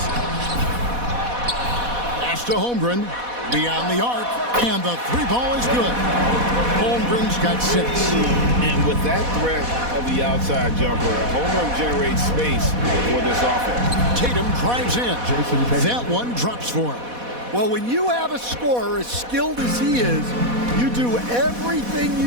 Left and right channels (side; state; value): left; late; 4.1 ms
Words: Pass to Holmgren. Beyond the arc, and the three ball is good. Holmgren's got 6. And with that threat of the outside jumper, Holmgren generates space for this offense. Tatum drives in. That one drops for him. Well, when you have a scorer as skilled as he is, you do everything